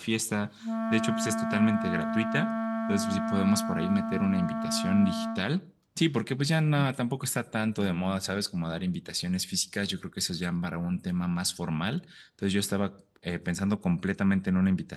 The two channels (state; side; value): identical; both; correlation 1.00